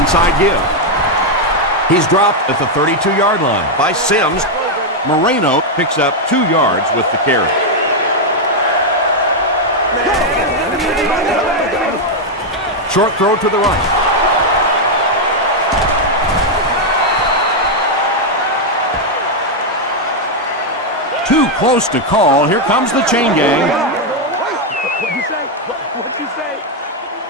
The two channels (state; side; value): normal; both; correlation 0.01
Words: give. He's dropped at the 32-yard line by Sims. Moreno picks up 2 yards with the carry. Short throw to the right. Too close to call. Here comes the chain gang. What'd you say? What'd you say?